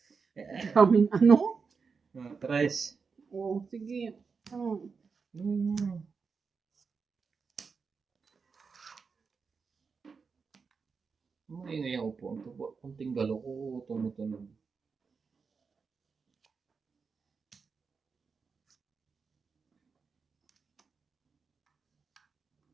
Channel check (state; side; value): quieter; left; 5.2 dB